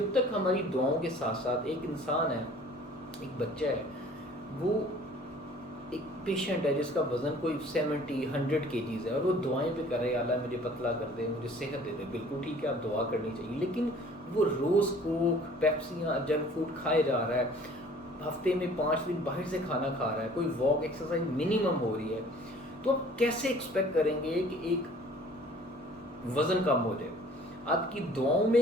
تک ہماری دعاؤں کے ساتھ ساتھ ایک انسان ہے، ایک بچہ ہے، وہ ایک پیشنٹ ہے جس کا وزن کوئی 70-100 kgs ہے، اور وہ دعائیں پہ کرے، اللہ مجھے پتلا کر دے، مجھے صحت دے دے، بالکل ٹھیک ہے، آپ دعا کرنی چاہیے، لیکن وہ روز کوک، پیپسیاں، جنک فوڈ کھائے جا رہا ہے، ہفتے میں 5 دن باہر سے کھانا کھا رہا ہے، کوئی واک ایکسرسائز منیمم ہو رہی ہے، تو آپ کیسے ایکسپیکٹ کریں گے کہ ایک وزن کم ہو جائے؟ آپ کی دعاؤں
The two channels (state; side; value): normal; both; correlation 0.51